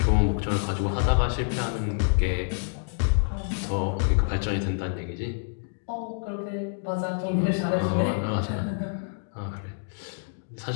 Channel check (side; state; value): right; silent; digital silence